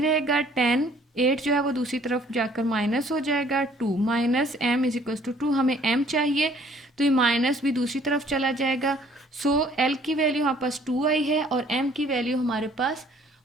रहेगा, 10 8 जो है वो दूसरी तरफ जाकर माइनस हो जाएगा, 2 minus m is equals to 2। हमें m चाहिए तो ये माइनस भी दूसरी तरफ चला जाएगा। सो l की वैल्यू हमारे पास 2 आई है और m की वैल्यू हमारे पास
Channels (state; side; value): normal; both; correlation 0.58